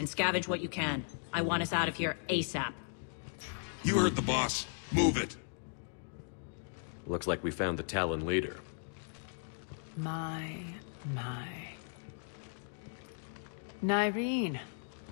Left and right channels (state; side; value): silent; right; digital silence